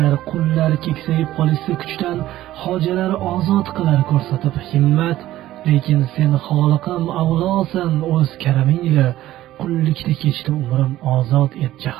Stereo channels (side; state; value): left; quieter; 14.6 dB